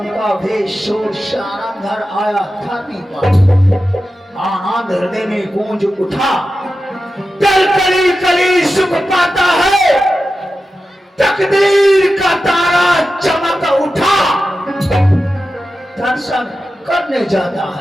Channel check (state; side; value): normal; both; correlation 0.92